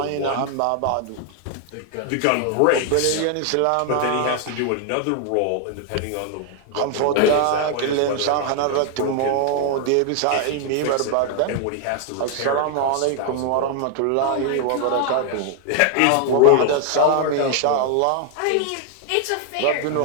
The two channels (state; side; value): different; both; correlation 0.00